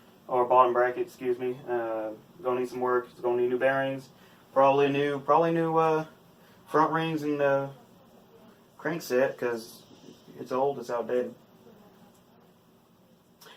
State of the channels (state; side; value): identical; both; correlation 1.00